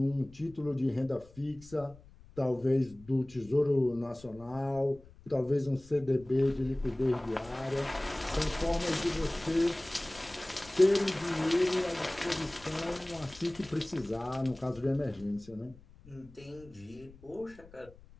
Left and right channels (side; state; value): left; noise; rumble, 22 dB below the sound